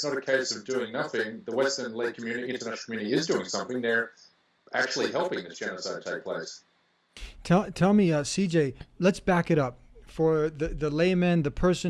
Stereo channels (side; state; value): both; identical; correlation 1.00